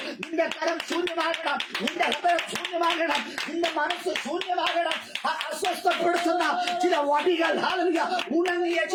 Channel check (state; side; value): identical; both; correlation 1.00